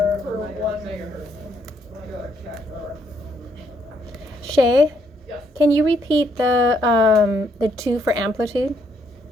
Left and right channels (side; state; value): both; normal; correlation 0.71